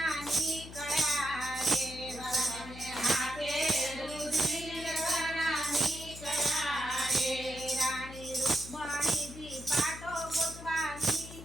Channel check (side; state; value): left; noise; hum, 14 dB below the sound